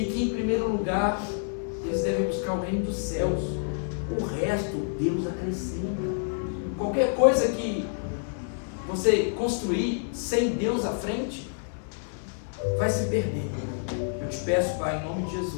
que em primeiro lugar eles devem buscar o reino dos céus, o resto Deus acrescenta. Qualquer coisa que você construir sem Deus à frente vai se perder. Eu te peço, Pai, em nome de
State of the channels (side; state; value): right; silent; digital silence